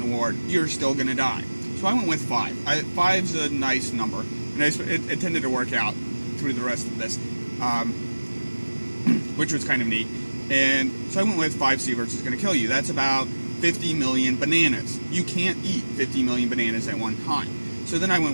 ward, you're still going to die. So I went with 5. 5's a nice number, and it tended to work out through the rest of this, which was kind of neat. And so I went with 5 sieverts is going to kill you. That's about 50 million bananas. You can't eat 50 million bananas at one time. So then I went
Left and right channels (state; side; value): inverted; both; correlation -1.00